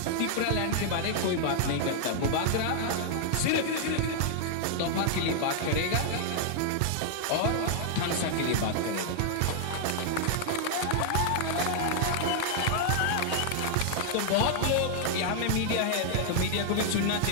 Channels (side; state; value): both; different; correlation -0.01